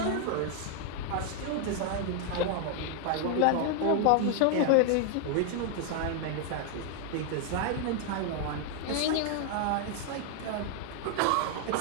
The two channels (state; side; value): different; both; correlation 0.00